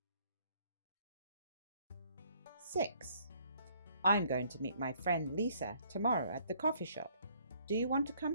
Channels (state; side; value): inverted; both; correlation -0.64